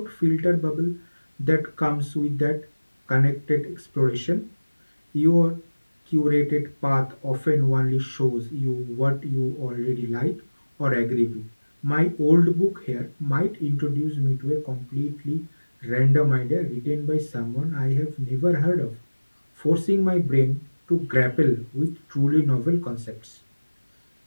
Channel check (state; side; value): inverted; both; correlation -1.00